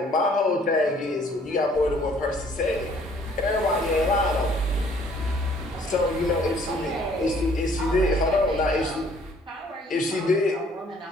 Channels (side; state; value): both; normal; correlation 0.59